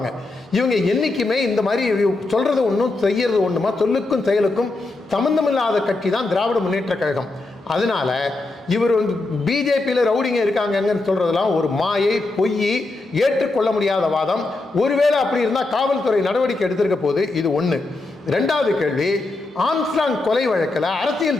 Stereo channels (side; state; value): right; quieter; 3.2 dB